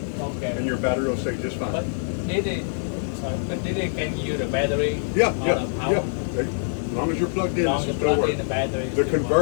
Okay. and your battery will stay just But fine. did it? Sorry, but did it can use the battery? Yeah. The power? As long as you're plugged in, Long this as will you still plug work. in the battery. The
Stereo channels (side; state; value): right; silent; digital silence